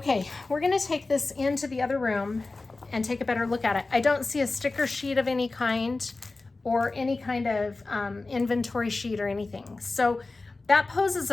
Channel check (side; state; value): right; quieter; 3.5 dB